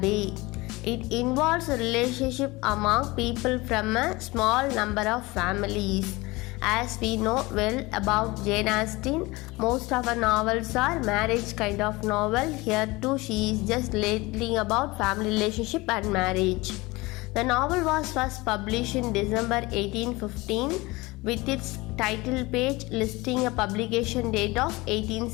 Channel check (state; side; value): quieter; right; 22.3 dB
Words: It involves a relationship among people from a small number of families. As we know well about Jane Austen, most of her novels are marriage kind of novel. Here too she is just lately about family relationship and marriage. The novel was first published in December 1815 with its title page listing a publication date of